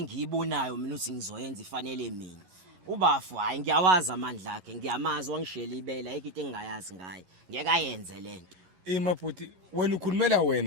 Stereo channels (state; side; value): late; left; 11 ms